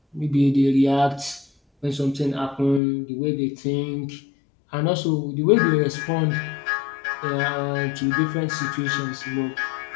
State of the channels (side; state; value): right; drops out; at 2.8 s